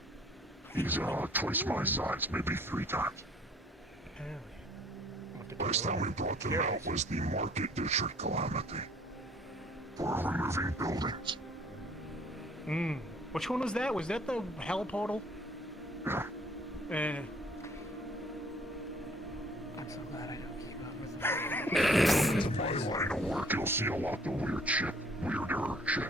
He's twice my size, maybe 3 times. Last time we brought them out was the Market District Calamity. For removing buildings. Which one was that? Was that the hell portal? Yeah. I'm so glad I don't keep up with In my line of work, you'll see a lot of weird shit. Weirder shit.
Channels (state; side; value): normal; both; correlation 0.57